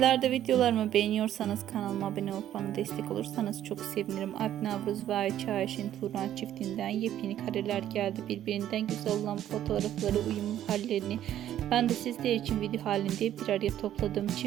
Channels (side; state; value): left; quieter; 11.6 dB